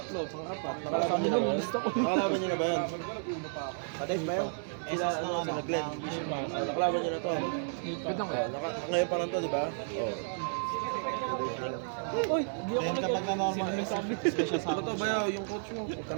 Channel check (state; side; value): silent; left; 56 dB below the other